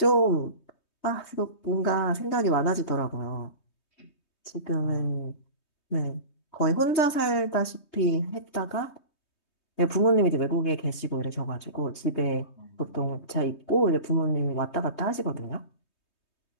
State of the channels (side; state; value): right; late; 3.2 ms